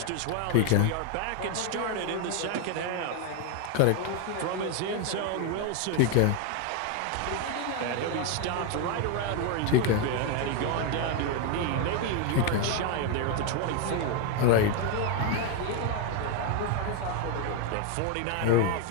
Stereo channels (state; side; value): different; both; correlation 0.01